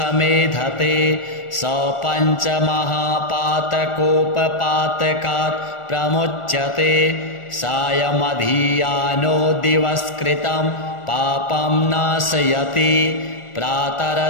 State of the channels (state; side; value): late; right; 1.4 ms